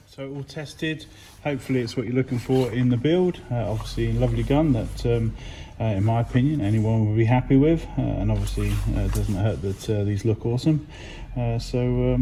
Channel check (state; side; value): identical; both; correlation 1.00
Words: so all tested. Hopefully it's what you're looking for in the build. Obviously a lovely gun that in my opinion anyone will be happy with, and obviously it doesn't hurt that these look awesome. Yeah, so